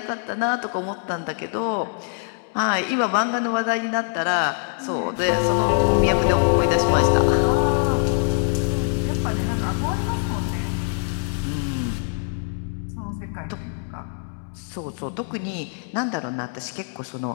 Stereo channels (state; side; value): silent; right; 63 dB below the other